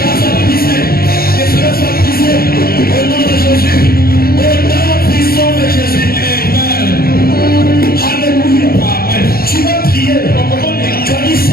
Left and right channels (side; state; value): right; late; 0.44 ms